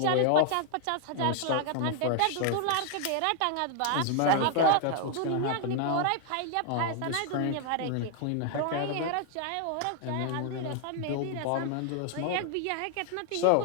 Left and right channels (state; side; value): different; both; correlation 0.00